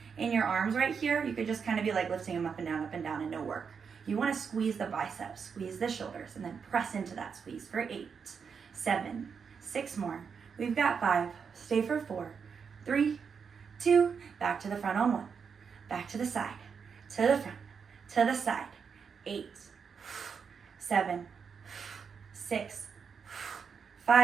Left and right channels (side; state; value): left; quieter; 6.2 dB